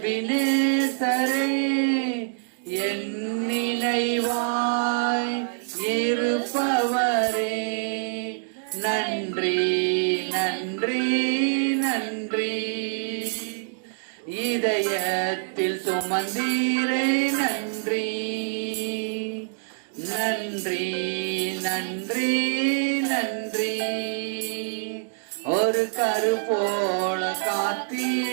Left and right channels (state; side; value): silent; left; digital silence